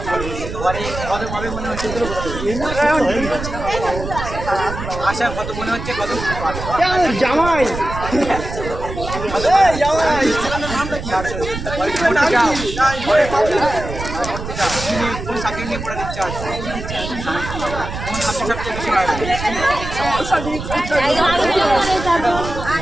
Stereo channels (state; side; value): noise; right; rumble, 8 dB below the sound